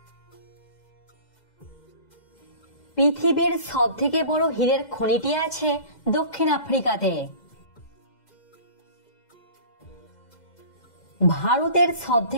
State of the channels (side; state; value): right; late; 2.0 ms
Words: পৃথিবীর সবথেকে বড় হীরের খনিটি আছে দক্ষিণ আফ্রিকাতে। ভারতের